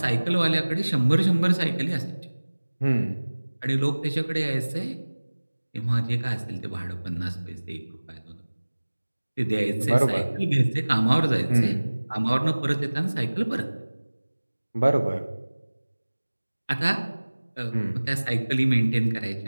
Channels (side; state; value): both; inverted; correlation -1.00